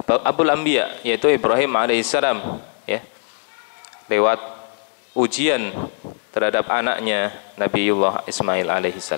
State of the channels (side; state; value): right; silent; digital silence